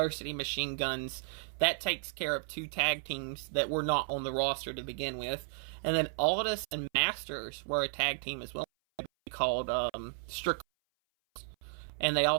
Machine Guns, that takes care of 2 tag teams that were not on the roster to begin with. And then Aldis and Masters were a tag team as well, called Strickland. And they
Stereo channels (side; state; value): left; silent; 55 dB below the other